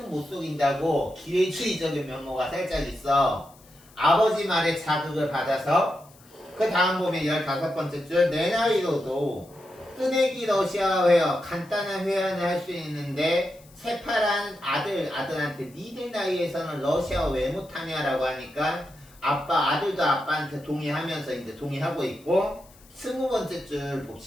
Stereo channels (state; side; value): noise; left; hiss, 26 dB below the sound